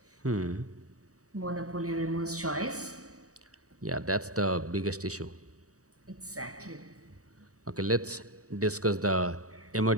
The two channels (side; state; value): left; late; 0.66 ms